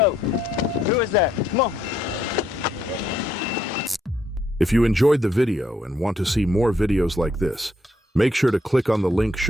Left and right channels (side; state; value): both; normal; correlation 0.72